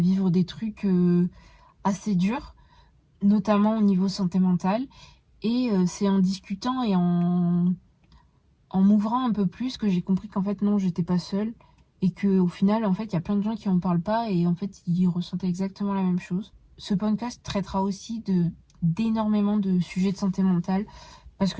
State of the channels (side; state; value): both; identical; correlation 1.00